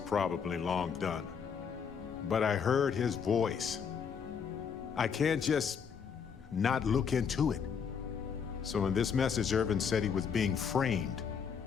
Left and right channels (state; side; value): quieter; right; 6.7 dB